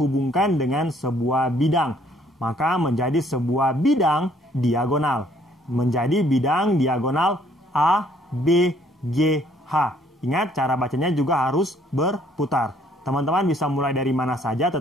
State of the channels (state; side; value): normal; both; correlation 0.63